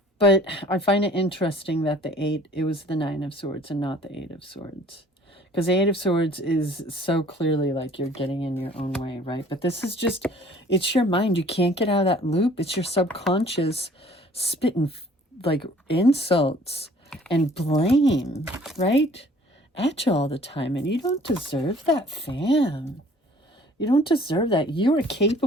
But I find it interesting that the 8, it was the 9 of Swords and not the 8 of Swords. Because the 8 of Swords is so clearly like you're getting in your own way, right? But this is just, it's your mind. You can't get out of that loop. It's your subconscious spitting like insults and blame, right? At you all the time. And you don't deserve that, fam. You don't deserve that. You are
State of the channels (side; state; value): both; normal; correlation 0.53